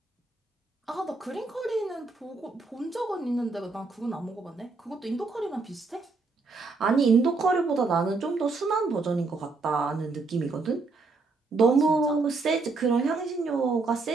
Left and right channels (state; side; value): quieter; left; 3.9 dB